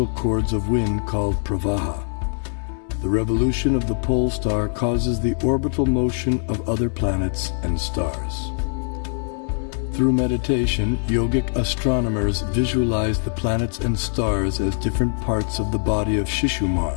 cords of wind called pravaha. The revolution of the pole star causes the orbital motion of other planets and stars. Through meditation, yogic astronomers visualize the planets and stars as different parts of the body of Shishumar,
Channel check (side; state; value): right; silent; 64 dB below the other